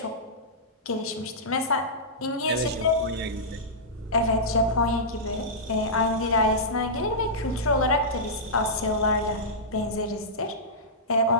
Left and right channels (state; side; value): normal; both; correlation -0.14